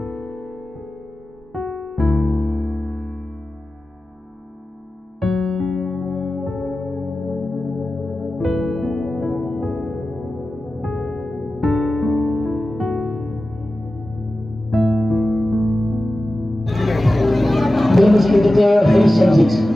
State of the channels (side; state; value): both; normal; correlation 0.94